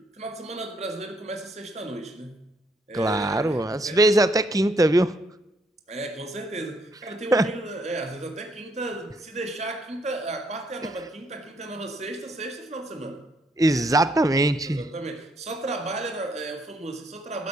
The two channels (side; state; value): both; normal; correlation 0.71